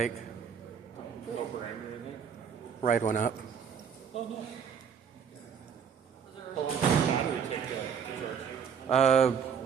Ride one up.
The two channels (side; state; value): left; quieter; 7.3 dB